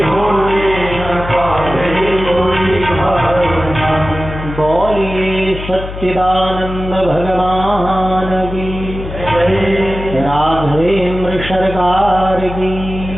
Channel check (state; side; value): noise; left; hum, 9 dB below the sound